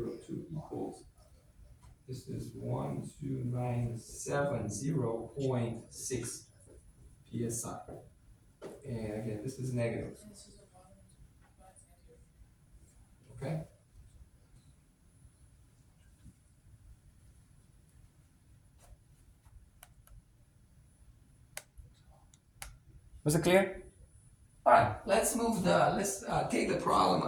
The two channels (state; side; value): identical; both; correlation 1.00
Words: equals, this is 12970.6 PSI. And again, this is negative. Okay? Was it clear? All right, let's take the problem